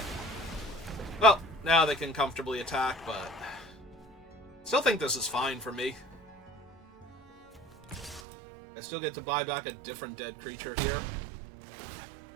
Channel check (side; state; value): left; drops out; at 8.2 s